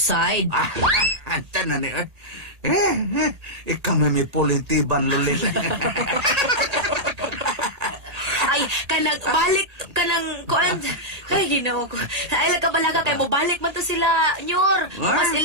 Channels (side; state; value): left; late; 1.8 ms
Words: Anta na ni. Ikaw may pulintiban, lulit. Ay, balik kanang kuan. Ay, ginoo ko. Ay, balaga kay mo balik man to sila, nyor. Mas